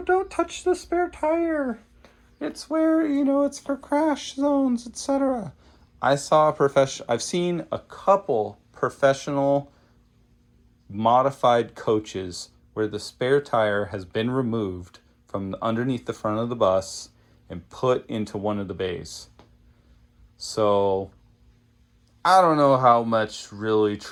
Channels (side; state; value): both; identical; correlation 1.00